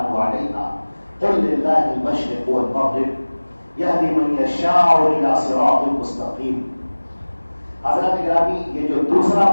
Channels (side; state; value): both; inverted; correlation -1.00